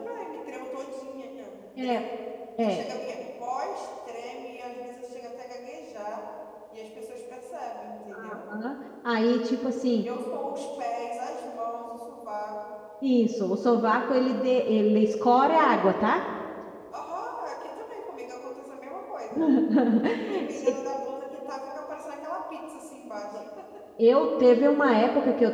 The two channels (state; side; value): identical; both; correlation 1.00